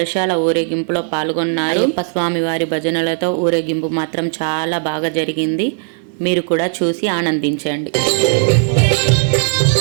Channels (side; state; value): left; silent; 58 dB below the other